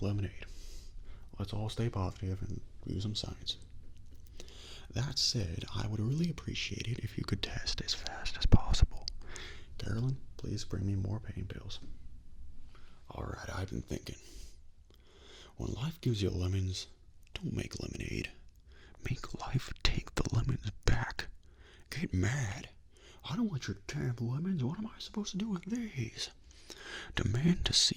lemonade. Let's all stay positive and use some science. That said, I would really appreciate it if you could test as fast as possible. Carolyn, please bring me more pain pills. Alright, I've been thinking. When life gives you lemons, don't make lemonade. Make life take the lemons back. Get mad. I don't want your damn lemons. What am I supposed to do with these? Demand to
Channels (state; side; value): identical; both; correlation 1.00